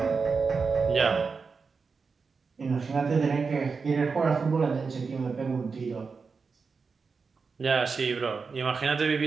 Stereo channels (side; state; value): left; quieter; 4.9 dB